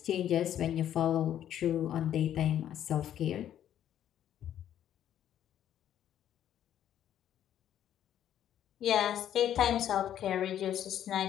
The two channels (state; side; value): quieter; right; 10.8 dB